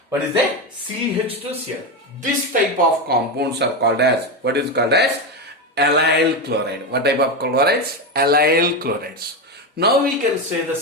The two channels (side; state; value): both; normal; correlation 0.13